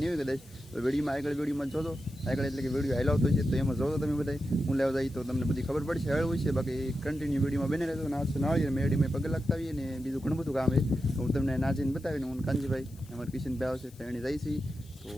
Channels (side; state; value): left; noise; hiss, 25 dB below the sound